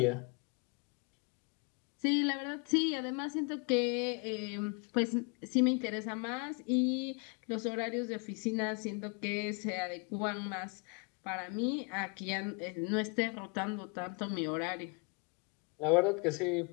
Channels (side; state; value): right; quieter; 33.9 dB